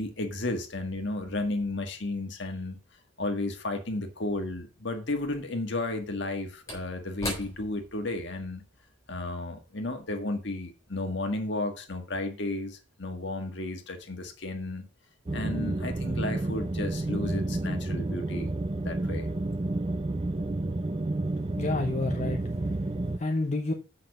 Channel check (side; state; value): both; normal; correlation 0.61